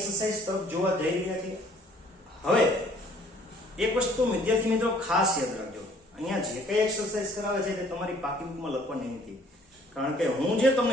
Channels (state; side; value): normal; both; correlation 0.58